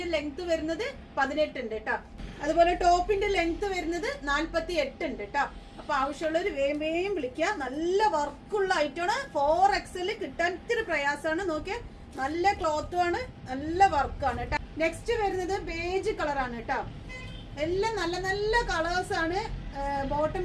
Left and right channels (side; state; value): both; identical; correlation 1.00